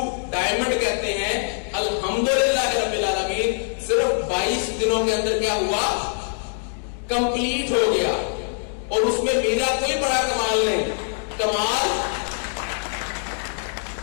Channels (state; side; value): silent; right; 59 dB below the other